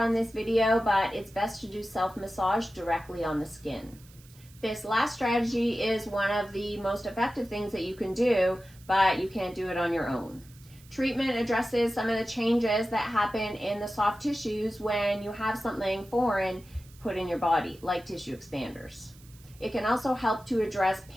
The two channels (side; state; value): right; noise; hiss, 25 dB below the sound